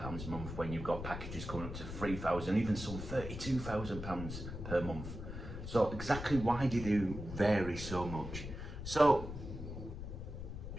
a month when you've got packages coming up to £3,000, even some £32,000 per month? So exactly why do they vary so much? So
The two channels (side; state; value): left; noise; rumble, 8 dB below the sound